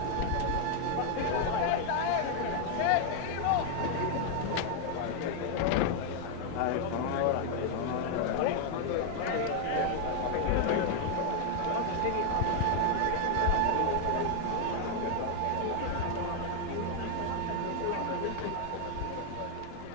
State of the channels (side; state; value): both; different; correlation 0.00